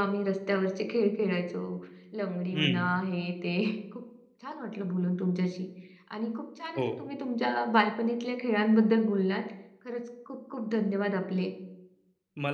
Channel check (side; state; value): both; identical; correlation 1.00